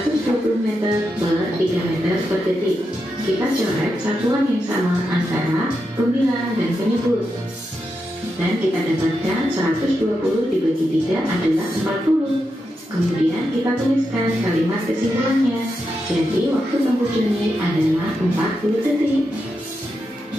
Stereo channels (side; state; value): both; normal; correlation 0.86